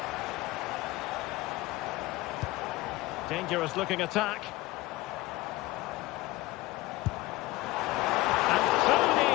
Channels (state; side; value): quieter; right; 19.0 dB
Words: Dangerous looking attack. And so